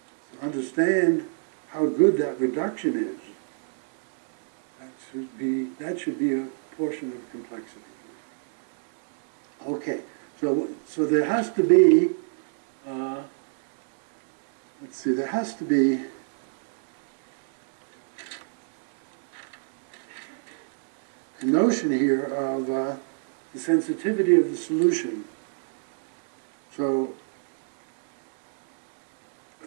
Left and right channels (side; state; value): left; silent; 61 dB below the other